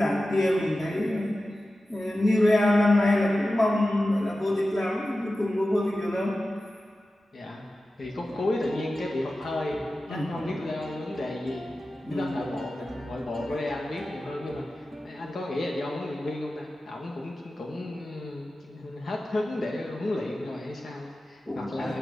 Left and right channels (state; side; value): normal; both; correlation 0.94